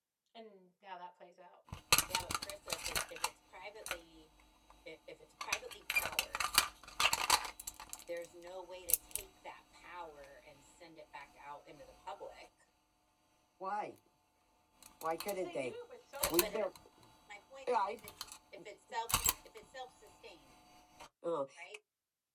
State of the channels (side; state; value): both; identical; correlation 1.00